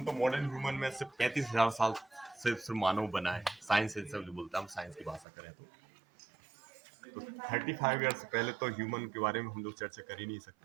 तो मॉडर्न ह्यूमन में सिर्फ 35,000 साल से सिर्फ मानव बना है। साइंस से सब जो बोलता है, हम साइंस की भाषा करें तो 35 ईयर्स पहले तो ह्यूमन के बारे में हम लोग चर्चा कर ही नहीं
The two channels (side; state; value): left; drops out; at 5.2 s